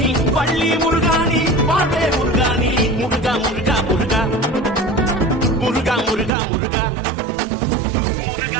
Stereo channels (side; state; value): left; drops out; at 6.3 s